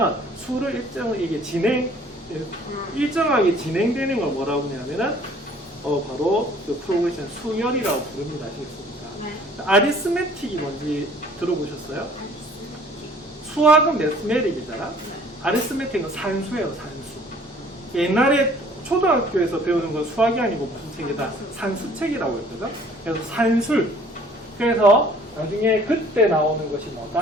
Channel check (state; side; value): normal; both; correlation 0.54